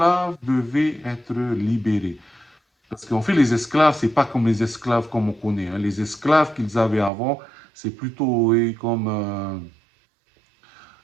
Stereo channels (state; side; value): drops out; left; at 7.1 s